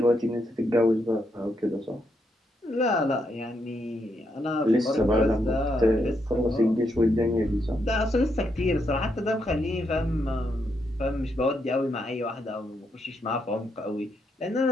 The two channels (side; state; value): both; normal; correlation 0.79